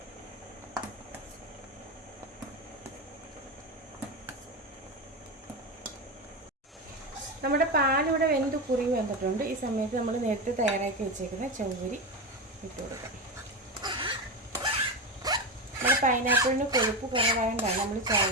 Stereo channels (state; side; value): normal; both; correlation 0.17